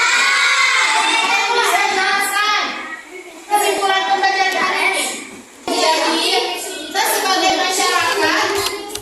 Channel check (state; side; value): identical; both; correlation 1.00